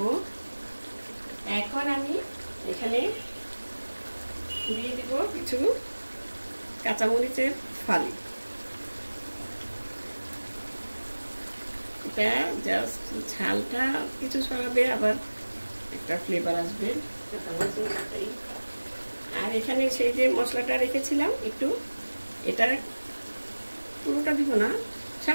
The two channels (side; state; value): both; inverted; correlation -1.00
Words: এখন আমি এখানে দিয়ে দিব কিছু কাঁচামরিচের ফালি, এটা জাস্ট ঝালটা কিছু সরাবে, আবার একটা ফ্লেভার আসবে। আর এখানে সেই যে মশলাটা রেখেছিলাম একটু, এটা পুরোটা দিব না,